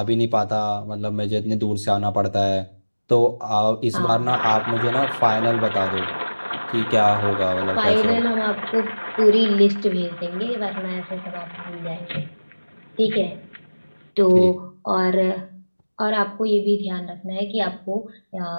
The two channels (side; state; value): both; inverted; correlation -1.00